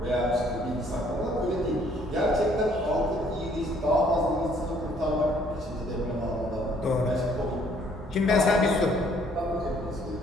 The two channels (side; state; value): both; normal; correlation 0.62